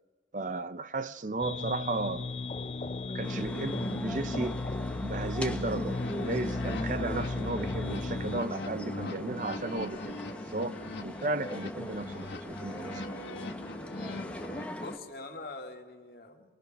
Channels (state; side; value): normal; both; correlation 0.44